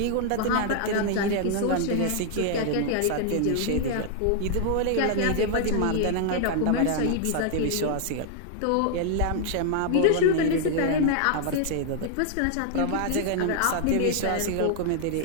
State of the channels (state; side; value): different; both; correlation 0.00